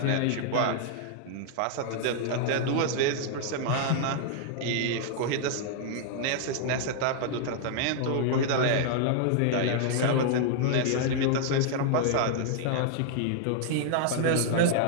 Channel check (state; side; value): different; both; correlation -0.01